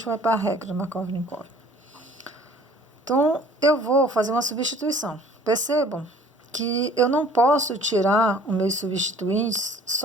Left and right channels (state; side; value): normal; both; correlation 0.52